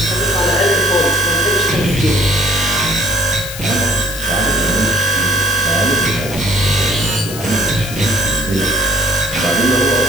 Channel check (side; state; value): left; noise; hiss, 10 dB below the sound